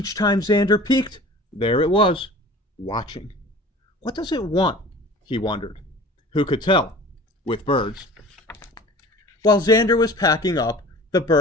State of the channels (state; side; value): normal; both; correlation 0.42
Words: time Xander peeked, there it was, watching. What does it want? He wondered. Who could tell? With birds. While Xander was packing up, the